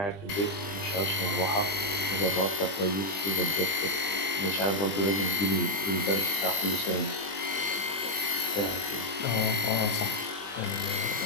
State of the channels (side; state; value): right; late; 20 ms